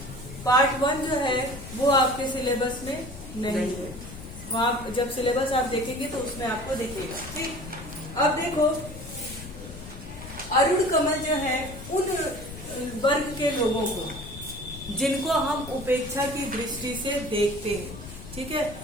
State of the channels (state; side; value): noise; left; rumble, 13 dB below the sound